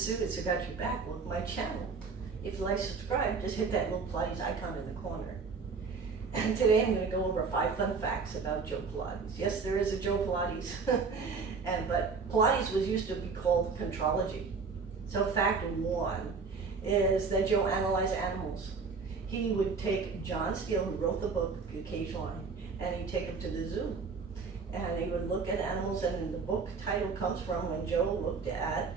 Sue. It's Got Your Back. Welcome to my channel. If you like to subscribe, just hit that little Pilates icon in the corner. And today I'm going to go over 5 fun facts about Joe Pilates. Yes, there is a Joe Pilates, but Pilates was used to be called contrology. So fact 1 is that Joe analyzed animals. He would take John Steele, who wrote the book, The Cage Lion, and he'd take him to the zoo. And he would look at animals, and the book title comes from when Joe looked at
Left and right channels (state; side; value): quieter; left; 4.9 dB